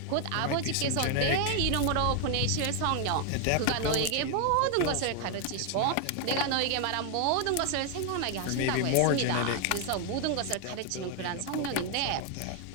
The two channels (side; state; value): both; different; correlation 0.01